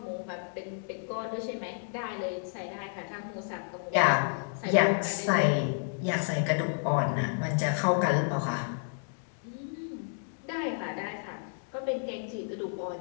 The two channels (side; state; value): right; silent; digital silence